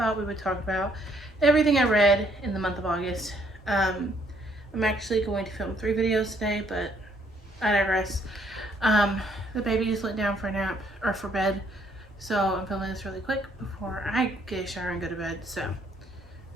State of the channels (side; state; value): both; normal; correlation 0.67